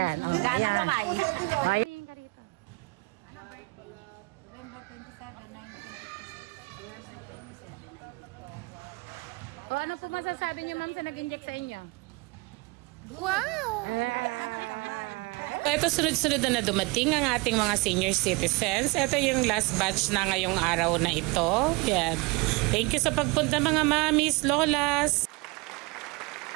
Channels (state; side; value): quieter; left; 26.5 dB